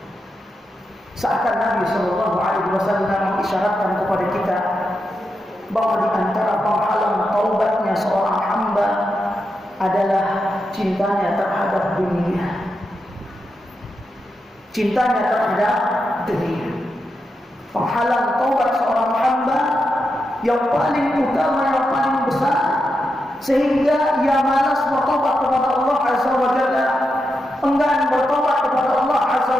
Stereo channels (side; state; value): both; normal; correlation 0.86